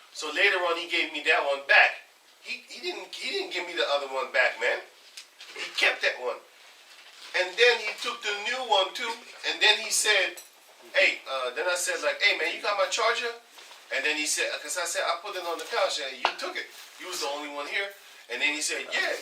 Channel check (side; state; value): both; identical; correlation 1.00